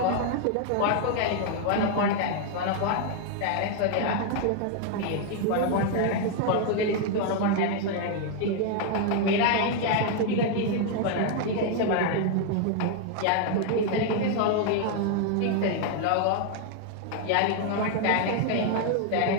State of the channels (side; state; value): both; different; correlation 0.00